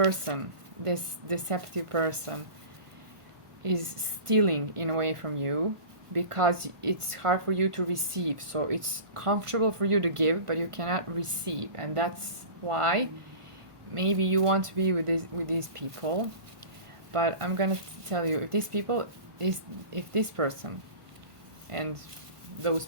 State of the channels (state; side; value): late; left; 1.5 ms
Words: this deceptive person, is stealing in a way from you, because it's hard for you to receive. So it's comfortable for you to give, but you cannot receive, and that's why maybe you want to be with these people. But I'm gonna tell you, if this person and those